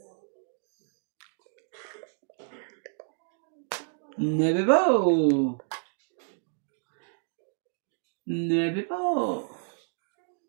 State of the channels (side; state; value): left; silent; digital silence